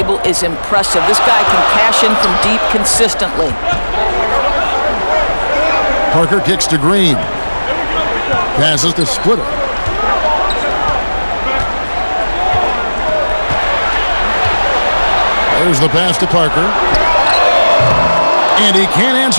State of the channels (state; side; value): inverted; both; correlation -1.00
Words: is impressive. This guy can cash in from deep consistently. Parker kicks to Green. Passes to Splitter. There's the pass to Parker. And he can't